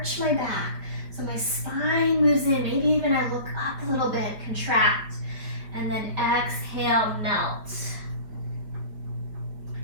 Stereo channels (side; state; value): left; late; 5.0 ms